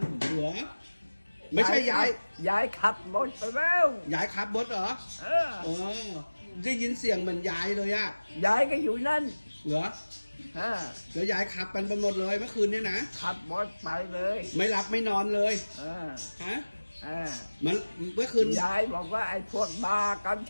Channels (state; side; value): inverted; both; correlation -1.00